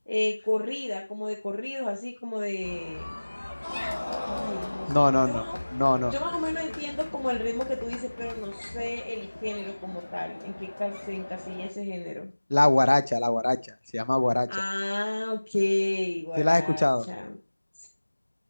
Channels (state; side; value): inverted; both; correlation -1.00